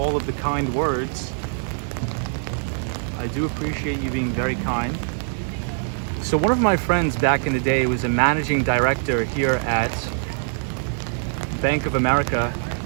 of the kind words. I do appreciate you being very kind. So one of my friends back in the day was a managing director here at Bank of America,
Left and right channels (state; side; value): silent; left; 57 dB below the other